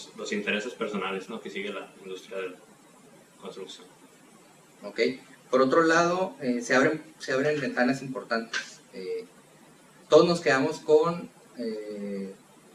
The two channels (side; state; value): both; identical; correlation 1.00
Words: los intereses personales, ¿no?, que sigue la industria de la construcción. Ok. Por otro lado, se abren ventanas importantes. Todos nos quedamos con